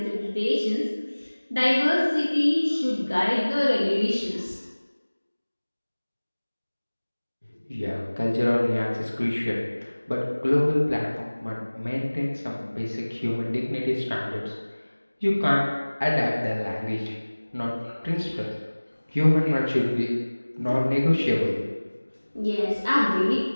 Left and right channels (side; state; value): both; inverted; correlation -1.00